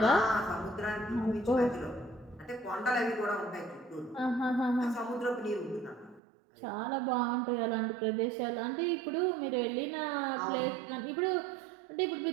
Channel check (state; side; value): drops out; left; at 6.2 s